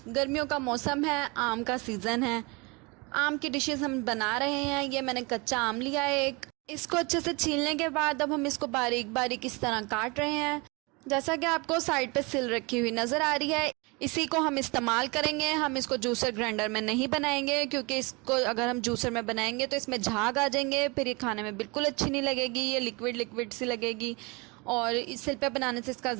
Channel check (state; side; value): quieter; left; 27.5 dB